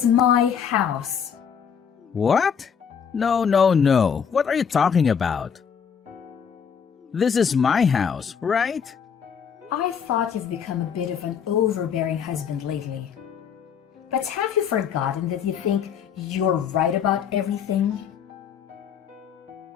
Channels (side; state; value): right; quieter; 7.3 dB